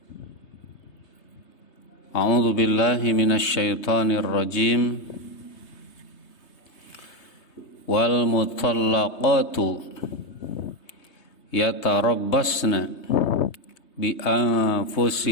A'udzu billahi minasy syaithanir rajim. Wal mutallaqatu yatarabbasna bi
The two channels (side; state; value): right; late; 3.3 ms